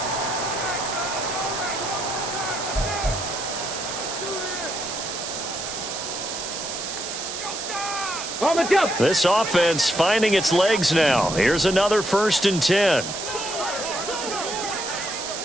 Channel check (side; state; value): right; noise; hiss, 6 dB below the sound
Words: This offense finding its legs now. Here's another 1st and 10.